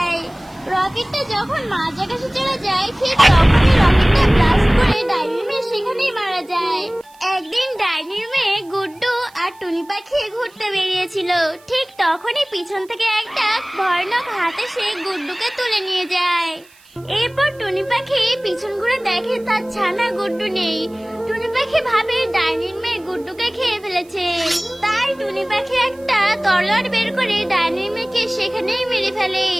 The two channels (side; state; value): right; noise; hiss, 28 dB below the sound